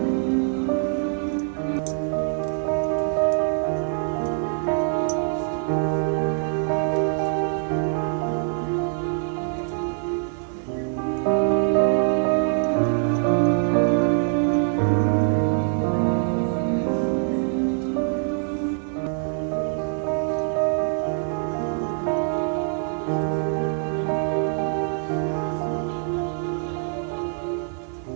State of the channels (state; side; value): silent; left; 63 dB below the other